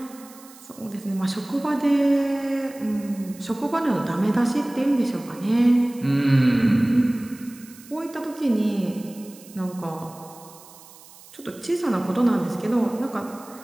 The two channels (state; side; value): noise; right; hiss, 21 dB below the sound